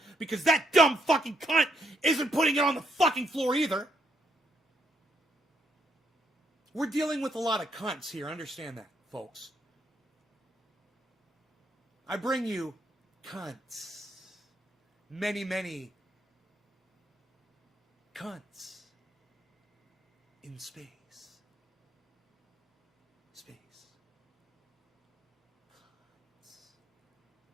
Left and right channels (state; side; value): normal; both; correlation 0.75